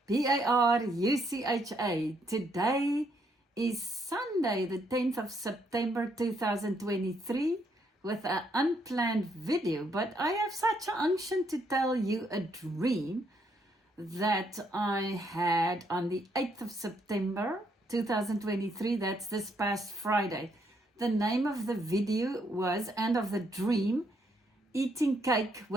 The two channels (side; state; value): both; normal; correlation 0.73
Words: Barucha. Today is Sunday, the 10th of September 2023, with an unplanned video. But I have such an unction to tell you a dream that I had on the 8th of September 2023. That's this past Friday. The name of the video was, and of the dream, Eating Cake